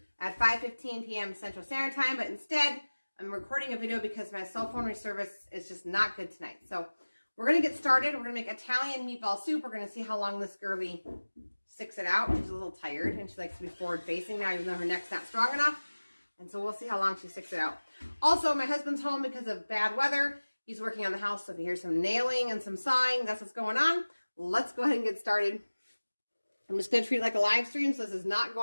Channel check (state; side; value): inverted; both; correlation -1.00